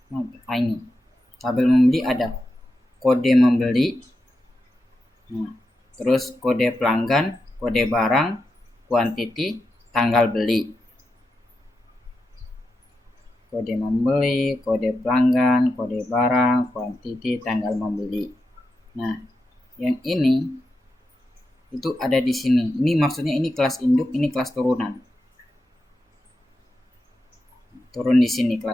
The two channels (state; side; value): normal; both; correlation 0.88